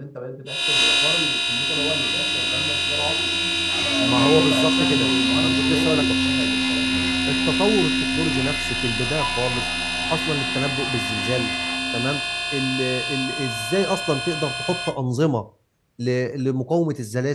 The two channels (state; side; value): identical; both; correlation 1.00